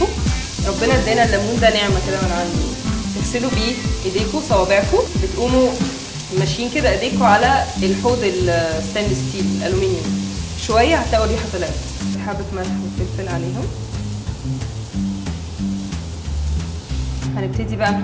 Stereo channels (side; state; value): both; identical; correlation 1.00